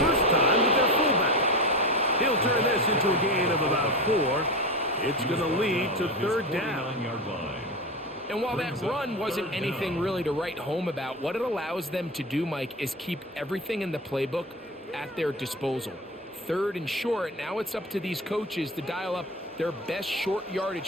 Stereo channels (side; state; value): both; normal; correlation 0.24